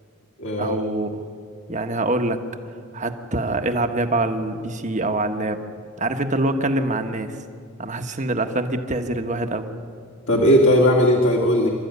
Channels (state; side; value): normal; both; correlation 0.27